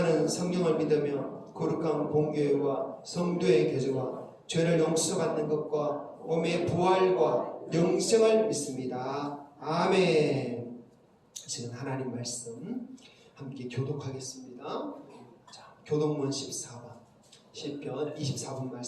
성령을 믿으며 거룩한 공교회와 성도의 교제와 죄를 용서받는 것과 몸의 부활과 영생을 믿습니다. 아멘. 지금 하나님 말씀 함께 교독하겠습니다. 자, 교독문 14번 시편 24번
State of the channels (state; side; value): identical; both; correlation 1.00